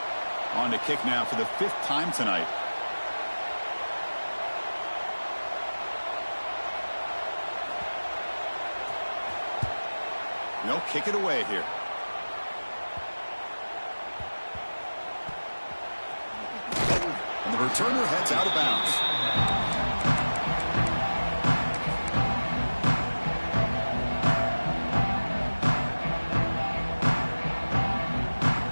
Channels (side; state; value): both; inverted; correlation -1.00